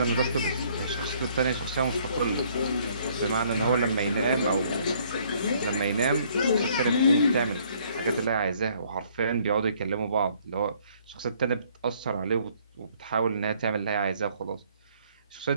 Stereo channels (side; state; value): both; inverted; correlation -0.63